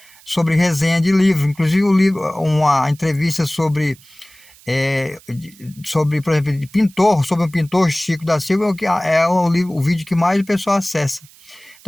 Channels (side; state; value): right; noise; hiss, 25 dB below the sound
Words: sobre resenha de livros. Inclusive, uma entrevista sobre, por exemplo, de pintor, sobre um pintor, Chico da Silva, é o vídeo que mais o pessoal acessa.